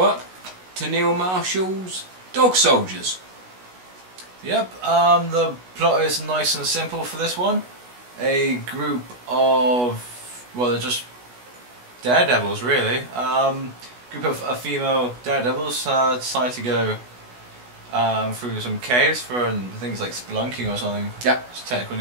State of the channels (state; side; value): late; left; 16 ms